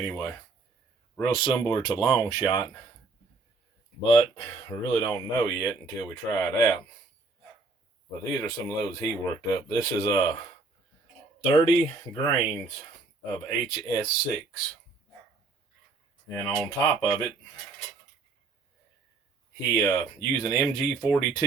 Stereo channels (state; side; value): quieter; left; 3.8 dB